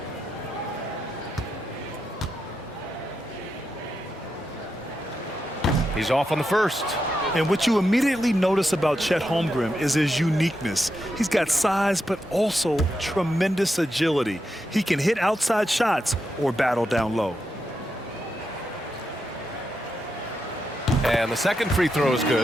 He's off on the first. And what you immediately notice about Chet Holmgren is his uniqueness. He's got size, but also tremendous agility. He can hit outside shots or battle down low. And the second free throw is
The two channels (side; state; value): both; normal; correlation 0.85